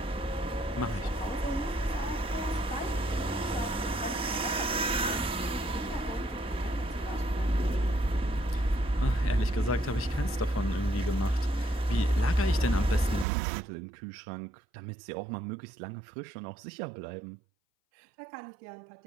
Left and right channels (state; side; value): drops out; left; at 13.2 s